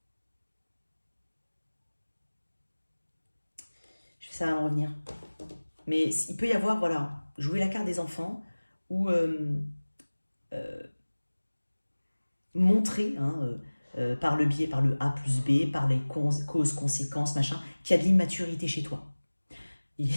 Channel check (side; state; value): both; inverted; correlation -1.00